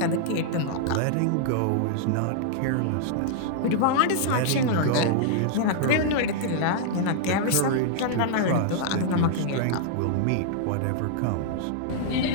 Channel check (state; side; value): different; both; correlation -0.01